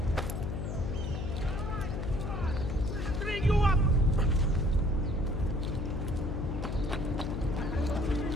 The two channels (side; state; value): left; noise; hum, 3 dB below the sound